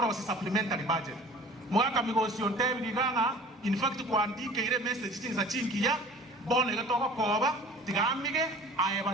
supplementary budget mwaka migosio ntebi diganga in fact kuandike ile message chinza chingia bone ngatoka koba tigamige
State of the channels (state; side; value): normal; both; correlation 0.45